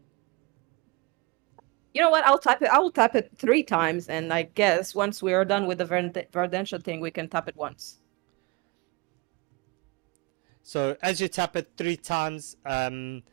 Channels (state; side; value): quieter; left; 26.1 dB